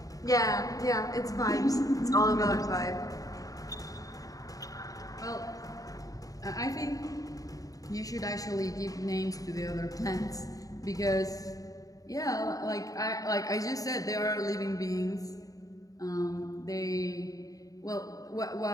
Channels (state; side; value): late; right; 0.17 ms